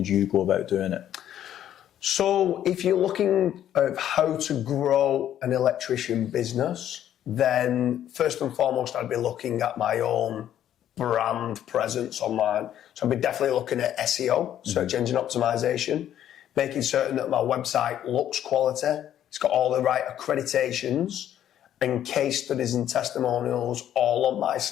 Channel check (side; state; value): right; quieter; 11.0 dB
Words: you go about doing it? So if you're looking at how to grow an electrician business, then first and foremost, I'd be looking at my own brand presence online. So I'd be definitely looking at SEO, search engine optimization, making certain that my website looks quality. It's got all the right accreditations and case studies and testimonials all on my